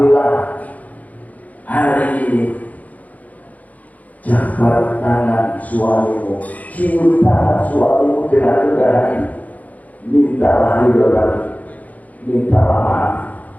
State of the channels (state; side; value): late; right; 0.075 ms